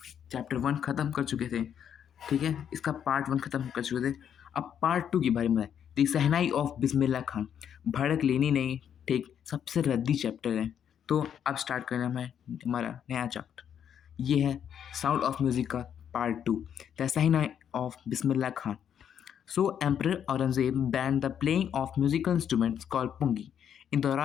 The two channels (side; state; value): right; quieter; 8.8 dB